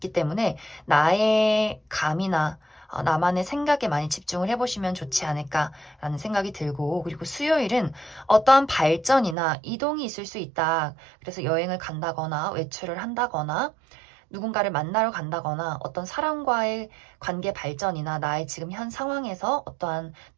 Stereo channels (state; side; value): drops out; left; at 9.3 s